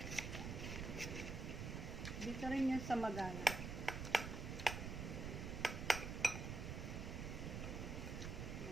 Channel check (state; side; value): noise; right; rumble, 4 dB below the sound